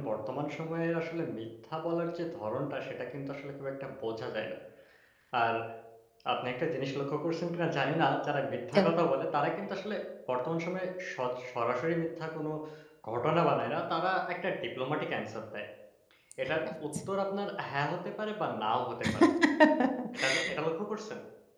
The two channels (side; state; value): both; identical; correlation 1.00